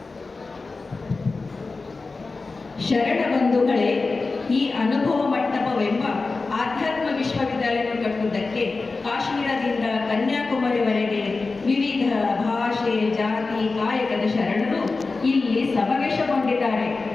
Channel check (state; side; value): quieter; right; 3.9 dB